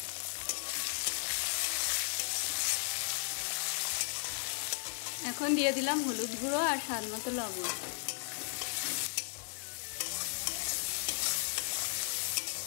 এখন দিয়ে দিলাম হলুদ গুঁড়ো আর স্বাদ মতো লবণ।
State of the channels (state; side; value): silent; right; digital silence